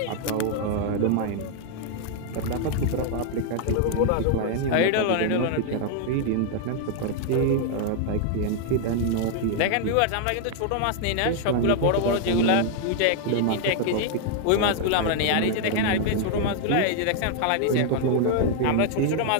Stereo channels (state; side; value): different; both; correlation 0.00